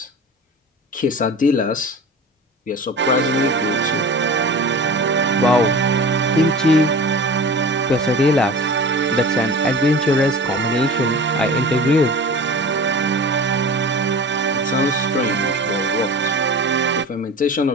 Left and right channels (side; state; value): both; normal; correlation 0.36